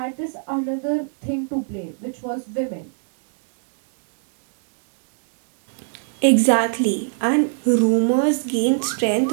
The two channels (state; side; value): silent; left; digital silence